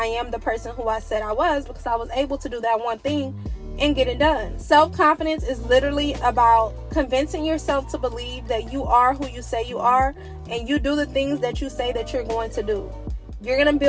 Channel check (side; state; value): both; identical; correlation 1.00